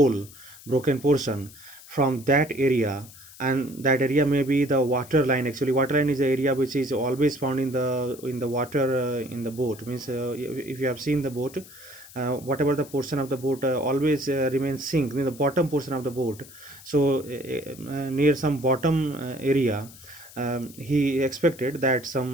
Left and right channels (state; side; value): noise; left; hiss, 19 dB below the sound